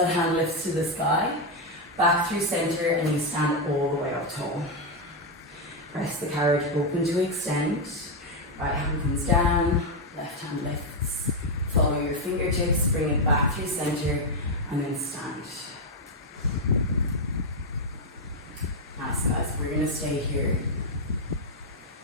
hand lifts to the sky. Back through center and you stand all the way up tall. Press the carriage open to extend. Right hand comes down. Left hand lifts. Follow your fingertips. Bring it back through center and then stand. Nice guys, we're going to stay here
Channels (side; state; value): both; normal; correlation 0.03